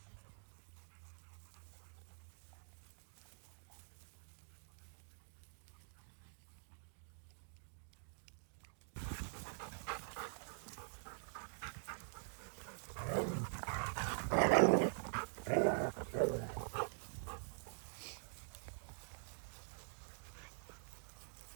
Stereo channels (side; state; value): left; silent; digital silence